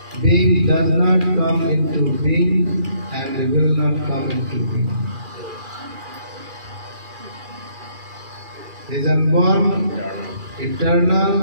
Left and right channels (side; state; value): left; late; 2.4 ms